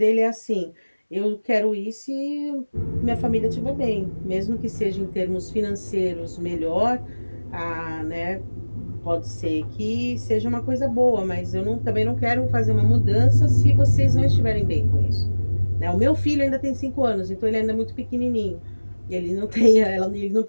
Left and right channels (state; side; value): inverted; both; correlation -1.00